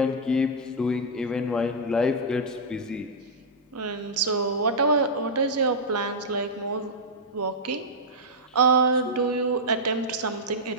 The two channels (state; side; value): normal; both; correlation -0.08